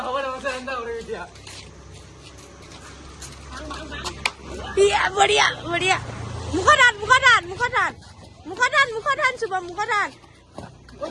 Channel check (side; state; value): both; identical; correlation 1.00